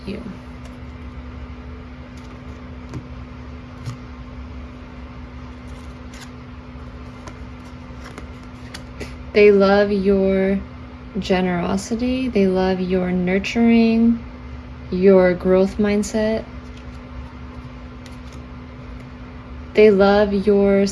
you. They love your generosity. They love your nurturing, your growth mindset. They love your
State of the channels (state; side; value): identical; both; correlation 1.00